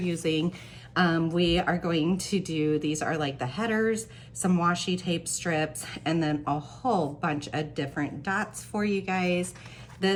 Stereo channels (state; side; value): identical; both; correlation 1.00